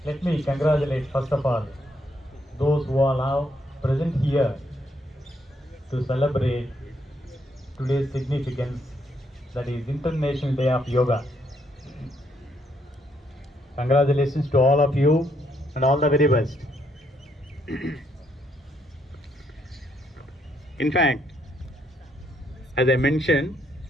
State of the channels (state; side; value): normal; both; correlation 0.73